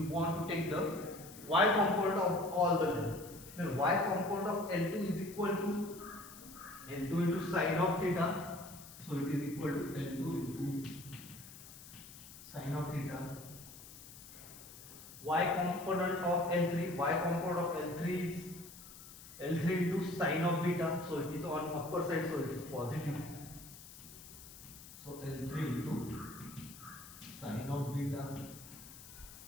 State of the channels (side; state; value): left; noise; hiss, 16 dB below the sound